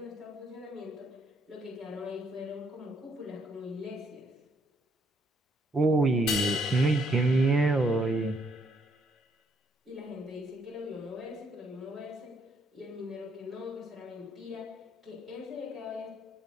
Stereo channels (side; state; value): both; normal; correlation 0.71